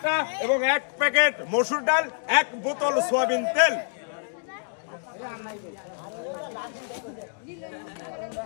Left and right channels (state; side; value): silent; right; digital silence